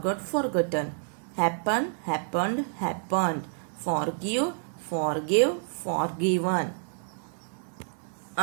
forgotten, happen happened happened, forgive forgive forgiven.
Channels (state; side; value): silent; left; 59 dB below the other